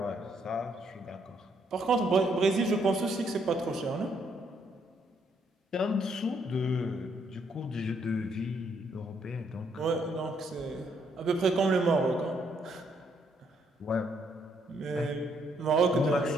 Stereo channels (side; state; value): both; normal; correlation 0.72